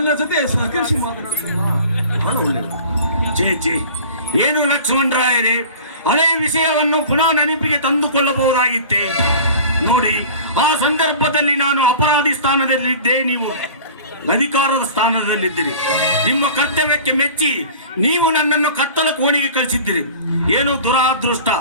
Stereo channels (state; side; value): inverted; both; correlation -0.41